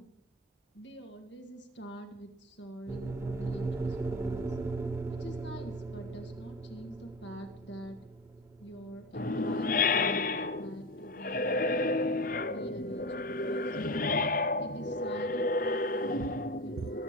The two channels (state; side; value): normal; both; correlation 0.26